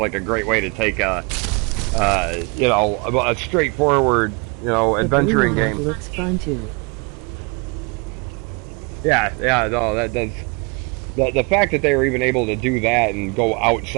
a great way to take a, you know, a straightforward, you know, adventuring The blue mod game. looks fun too. Yeah, yeah, no, that does. The fact that they were even able to do that and go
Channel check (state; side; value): quieter; left; 31.0 dB